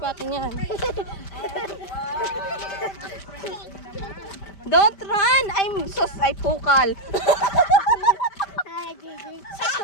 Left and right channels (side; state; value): right; late; 5.1 ms